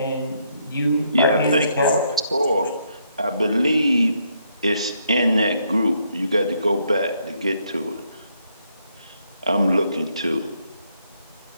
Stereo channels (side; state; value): both; inverted; correlation -0.73